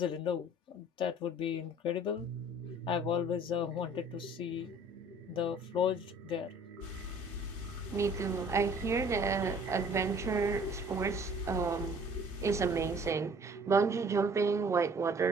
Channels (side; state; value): both; normal; correlation 0.53